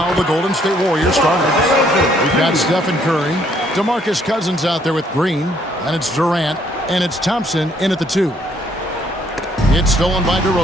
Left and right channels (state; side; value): normal; both; correlation 0.67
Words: the Golden State Warriors starters. We've got Stephen Curry, DeMarcus Cousins out there with Green, and it's Durant, and it's Thompson in at the 2. It's stolen by